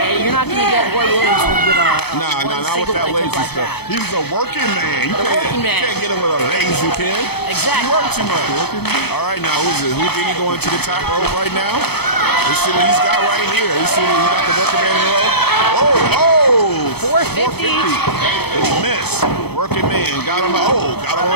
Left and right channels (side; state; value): right; late; 0.97 ms